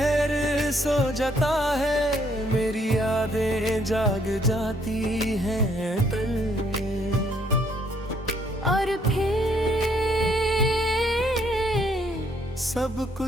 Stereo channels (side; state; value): both; normal; correlation 0.68